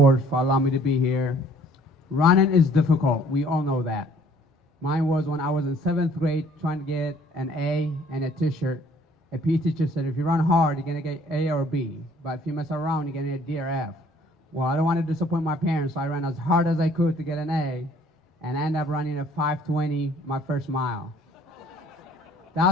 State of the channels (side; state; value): both; normal; correlation 0.58